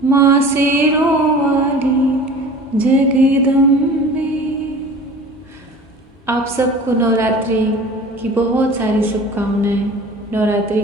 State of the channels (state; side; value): normal; both; correlation 0.41